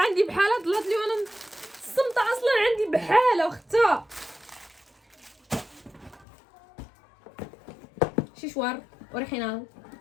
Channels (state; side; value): drops out; right; at 6.2 s